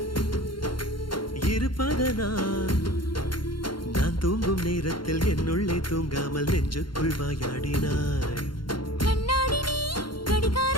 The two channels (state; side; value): late; right; 0.72 ms